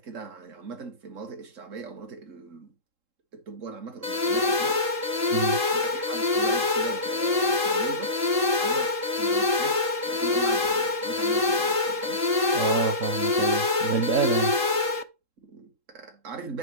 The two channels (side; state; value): left; late; 3.7 ms